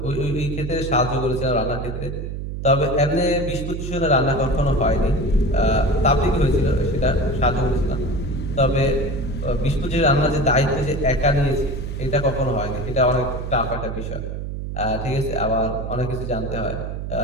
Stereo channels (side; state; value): right; noise; hum, 6 dB below the sound